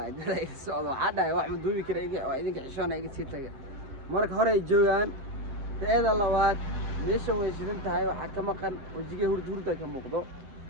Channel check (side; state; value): left; late; 7.7 ms